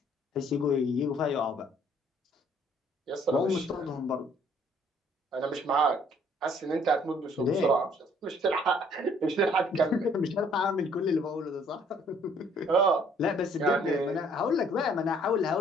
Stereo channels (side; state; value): both; normal; correlation 0.61